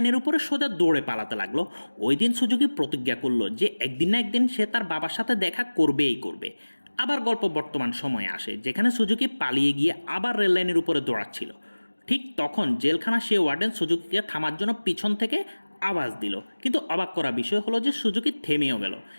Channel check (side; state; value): both; inverted; correlation -1.00